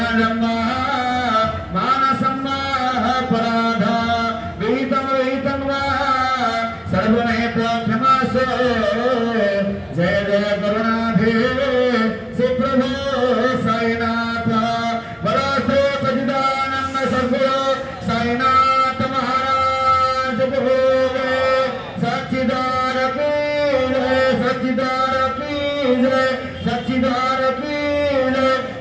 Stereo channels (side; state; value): both; identical; correlation 1.00